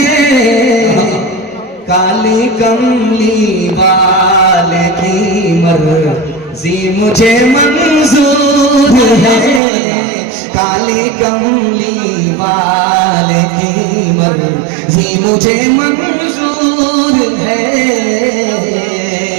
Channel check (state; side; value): drops out; left; at 9.6 s